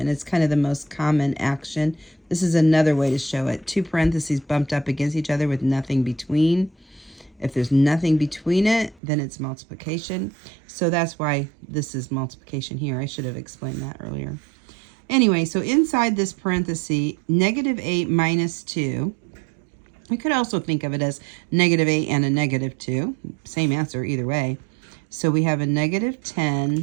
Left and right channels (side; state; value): left; drops out; at 9.0 s